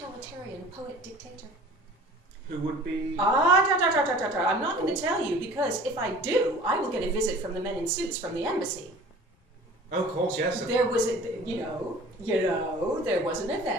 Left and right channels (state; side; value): normal; both; correlation 0.45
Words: poet-dictator. Who would be... I'm not going to tell you, because if I do, I will get a visit from the men in suits from the embassy. Oh, of course, yes. There was, there was an